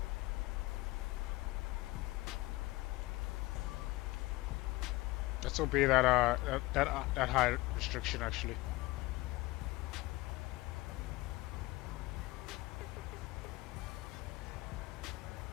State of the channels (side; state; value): right; quieter; 20.4 dB